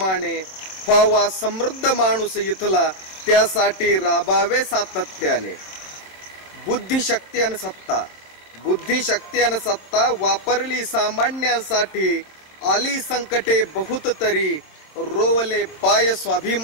व्हावा समृद्ध माणूस इथला त्यासाठी राबावे सातत्याने। बुद्धिशक्ती आणि सत्ता वापरली सामान्यांसाठी, आली संकटे बहुत तरी रोवले पाय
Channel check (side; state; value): right; late; 26 ms